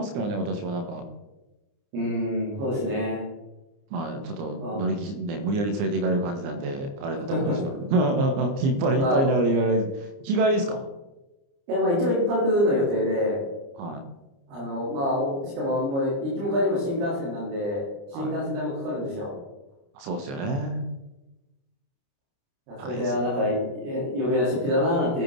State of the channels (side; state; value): left; late; 29 ms